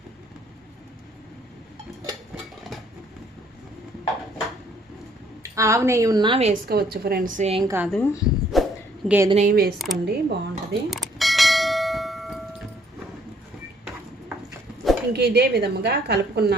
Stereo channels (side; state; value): both; normal; correlation 0.64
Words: ఆవు నెయ్యి ఉన్నా వేసుకోవచ్చు ఫ్రెండ్స్, ఏం కాదు. గేదె నెయ్యి వేసుకోండి, బాగుంటుంది. ఇంక ఇదే విధముగా